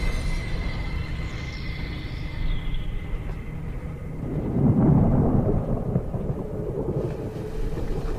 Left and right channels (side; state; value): both; identical; correlation 1.00